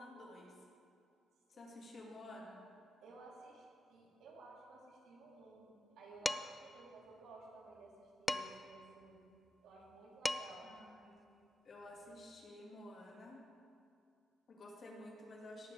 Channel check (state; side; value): normal; both; correlation 0.93